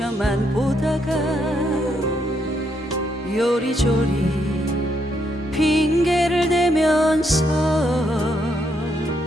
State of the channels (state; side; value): normal; both; correlation 0.76